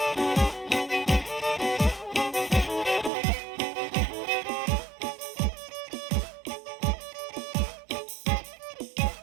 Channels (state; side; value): drops out; left; at 3.1 s